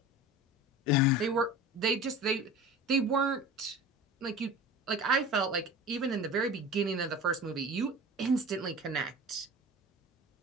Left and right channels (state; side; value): normal; both; correlation 0.36